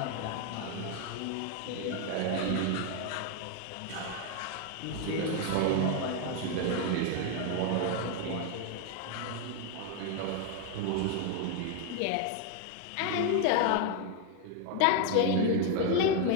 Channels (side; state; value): both; different; correlation 0.01